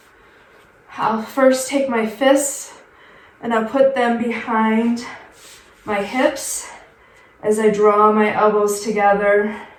I'll first take my fists and I'll put them behind my hips as I draw my elbows together,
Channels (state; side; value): identical; both; correlation 1.00